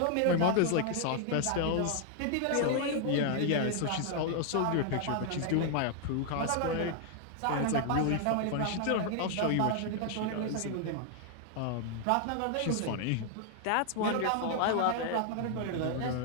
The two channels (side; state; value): both; different; correlation 0.00